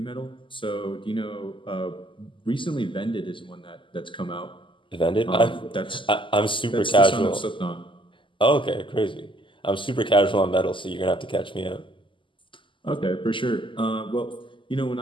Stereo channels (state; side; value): late; right; 0.25 ms